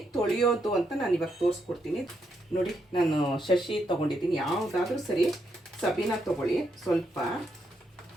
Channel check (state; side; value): normal; both; correlation 0.79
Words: ತೊಳೆಯೋದು ಅಂತ ನಾನು ಇವಾಗ ತೋರಿಸ್ಕೊಡ್ತೀನಿ. ನೋಡಿ, ನಾನು ಶಶಿ ತೊಗೊಂಡಿದ್ದೀನಿ. ಯಾವುದಾದ್ರೂ ಸರಿ, ಸಬೀನ ತೊಗೊಳ್ಳಿ. ಸ್ವಲ್ಪ